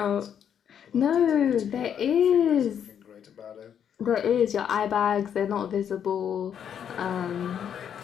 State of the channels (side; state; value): right; quieter; 8.6 dB